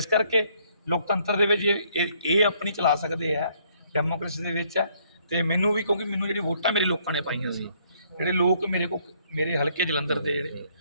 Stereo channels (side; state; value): both; inverted; correlation -0.66